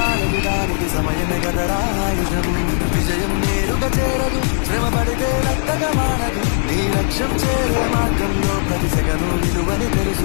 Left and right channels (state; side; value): silent; right; 57 dB below the other